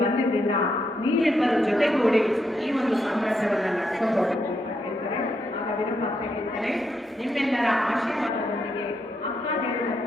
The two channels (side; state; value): both; normal; correlation 0.80